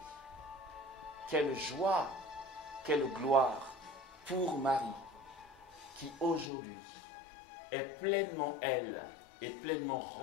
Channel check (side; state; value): right; drops out; at 6.5 s